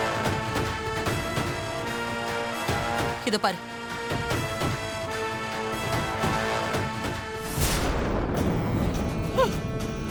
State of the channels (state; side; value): identical; both; correlation 1.00